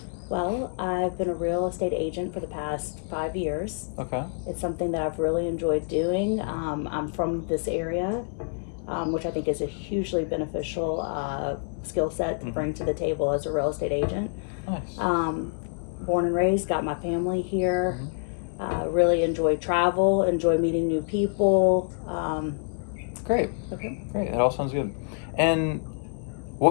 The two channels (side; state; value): right; silent; 60 dB below the other